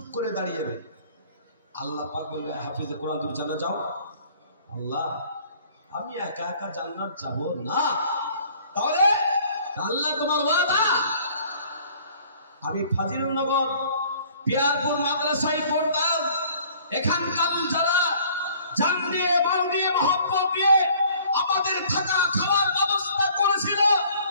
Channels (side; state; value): both; inverted; correlation -0.55